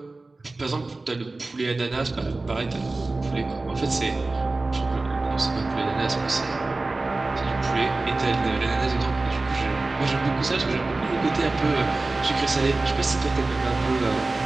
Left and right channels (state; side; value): quieter; left; 3.3 dB